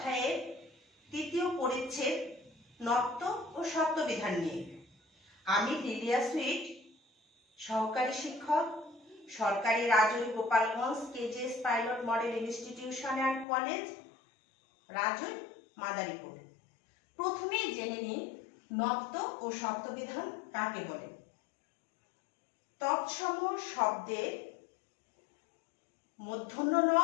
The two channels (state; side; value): drops out; right; at 13.5 s